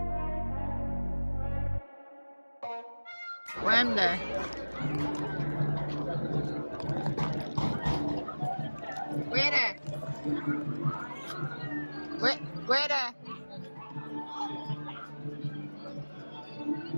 Where am there? Where there? Where there?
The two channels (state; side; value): inverted; both; correlation -1.00